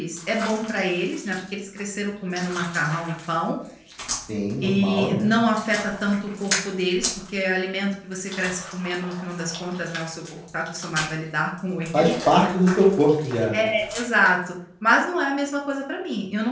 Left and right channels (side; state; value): both; identical; correlation 1.00